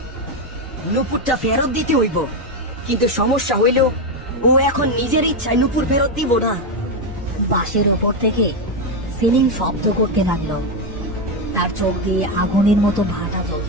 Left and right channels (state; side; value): normal; both; correlation 0.08